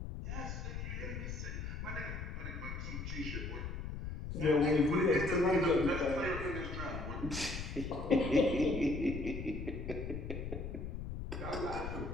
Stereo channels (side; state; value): left; noise; rumble, 6 dB below the sound